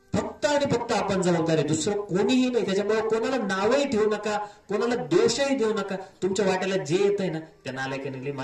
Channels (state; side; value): identical; both; correlation 1.00